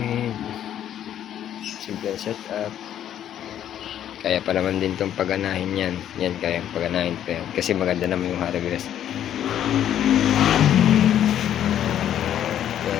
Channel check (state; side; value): quieter; right; 10.6 dB